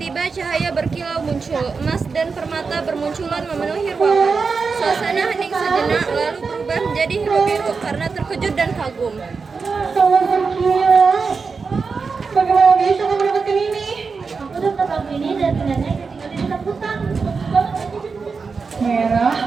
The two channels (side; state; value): left; quieter; 4.9 dB